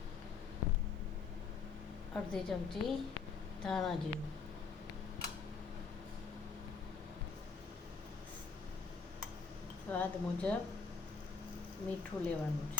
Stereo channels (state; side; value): quieter; right; 5.2 dB